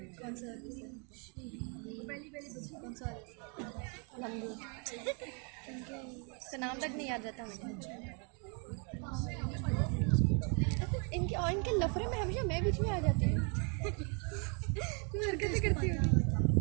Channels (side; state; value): left; quieter; 37.0 dB